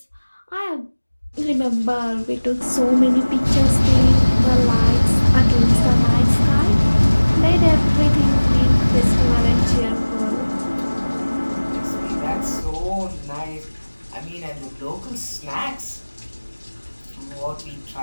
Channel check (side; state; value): both; inverted; correlation -1.00